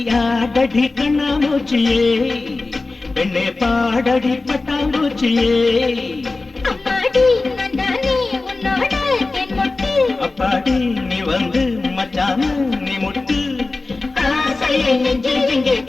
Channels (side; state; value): right; quieter; 3.5 dB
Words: கண்ணாமூச்சியே, பெண்ணே பாடடி பட்டாம்பூச்சியே. அம்மாடி நந்தானே உன்னோட தென் மொட்டு. அப்பாடி நீ வந்து மச்சான நீ முட்டு. ஆசையை நெஞ்சில் இங்கே